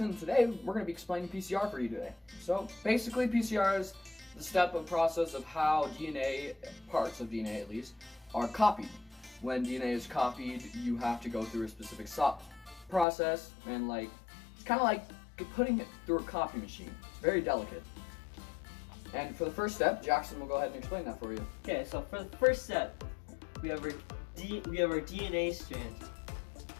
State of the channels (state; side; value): drops out; right; at 13.1 s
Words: Today, we're going to be explaining PCR for you today. So, basically, PCR is the step of process of how DNA, parts of DNA at least, are copied. When DNA is copied, you have to go through a specific process, and it's kind of like putting it through a copy machine. It's very delicate. And for the first step, Jackson will go ahead and explain that for you. Okay, so for the first step, we have our DNA strand.